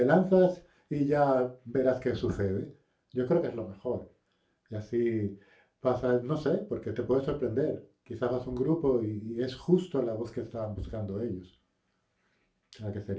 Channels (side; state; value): both; identical; correlation 1.00